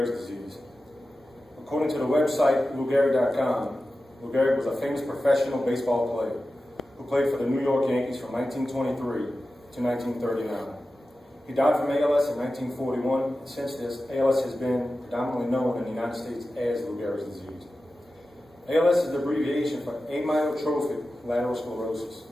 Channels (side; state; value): both; normal; correlation 0.94